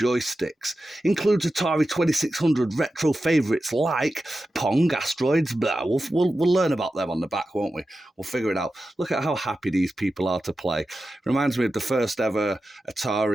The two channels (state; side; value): normal; both; correlation 0.92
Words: Includes Atari 2600 retro favourites like Pong, Asteroids, blah. We'll learn about them on the back, won't we? We'll figure it out. Look at how happy these people are to play. Reminds me of the first ever